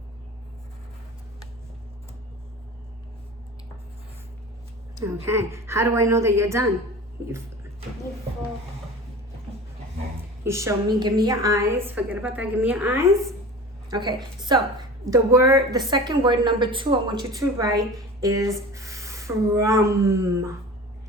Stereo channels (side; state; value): both; normal; correlation 0.37